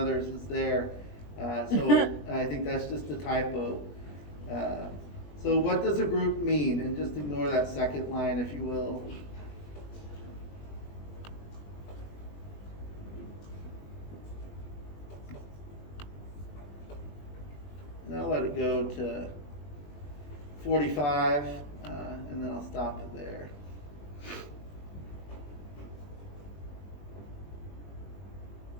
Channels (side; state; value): right; late; 20 ms